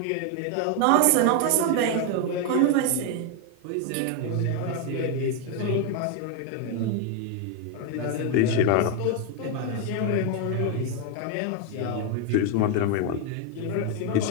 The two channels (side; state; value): both; different; correlation 0.01